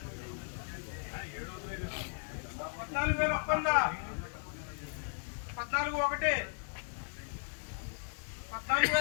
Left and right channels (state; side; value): silent; right; 54 dB below the other